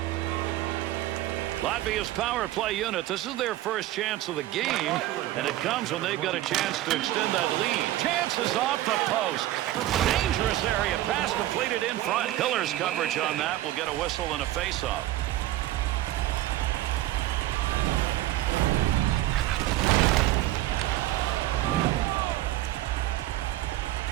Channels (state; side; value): quieter; left; 15.1 dB